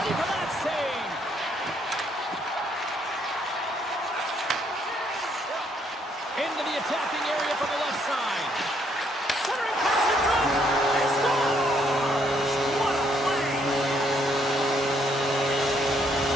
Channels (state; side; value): normal; both; correlation 0.70